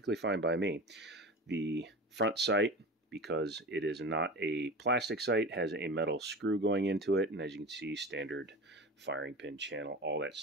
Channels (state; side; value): normal; both; correlation 0.31